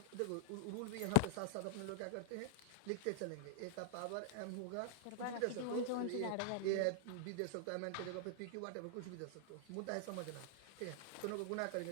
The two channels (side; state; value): both; different; correlation -0.01